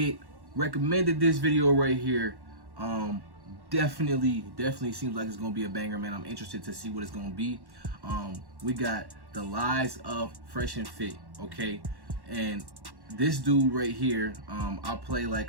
recommended this video right here. Definitely seems like it's going to be a banger, man. I'm interested to see what it's going to be. We got The Lies of Fresh and Fit, okay? And this dude right here, I'll play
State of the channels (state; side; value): late; left; 1.1 ms